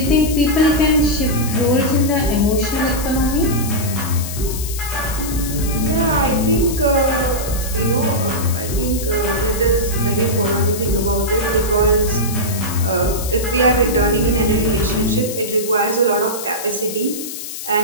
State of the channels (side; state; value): left; noise; hiss, 9 dB below the sound